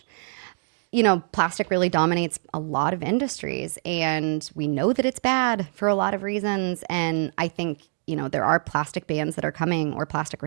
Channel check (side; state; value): left; silent; digital silence